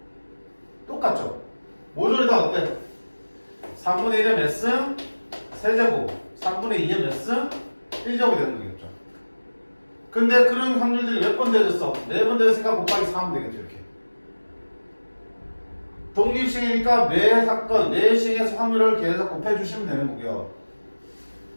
똑같죠? 모조리 다 어때? 3분의 1의 몇 승? 세제곱. 3분의 2의 몇 승? 1제곱이 되는 거겠죠. 근데 그런 확률들이 몇 번 되어졌어? 4번 되었으니까 곱하기 4 하면 되겠죠, 이렇게. 독립시행이니까 매 사건, 매 시행에서 확률을 계속 곱해주시면 되는 거고요.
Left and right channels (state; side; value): inverted; both; correlation -1.00